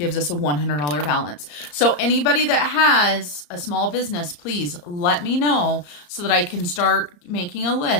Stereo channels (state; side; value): late; right; 34 ms